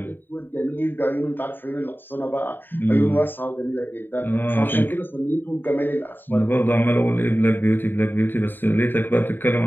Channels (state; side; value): late; right; 0.093 ms